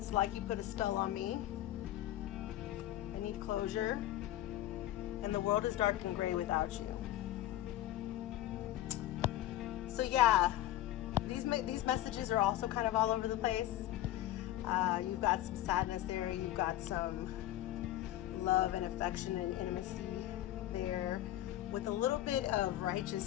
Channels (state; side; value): quieter; right; 14.1 dB